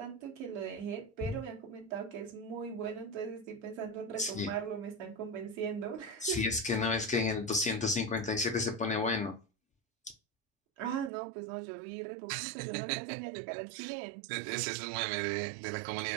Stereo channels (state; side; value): drops out; left; at 11.1 s